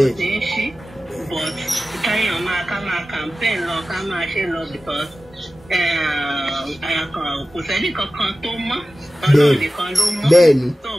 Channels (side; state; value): both; normal; correlation 0.95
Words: but káyọ̀ ká máa campaign lọ ká máa ṣe lọ because kò sẹ́ni kankan tó mọ́ ọlọ́run nìkan ló mọ́ bẹ́ẹ̀ ni tó